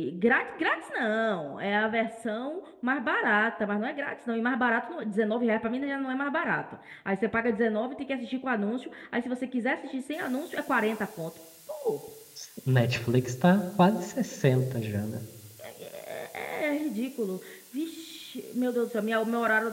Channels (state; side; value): identical; both; correlation 1.00